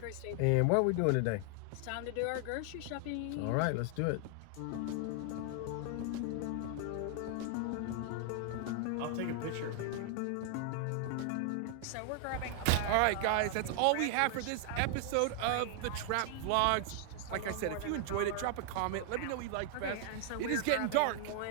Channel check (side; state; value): both; different; correlation 0.00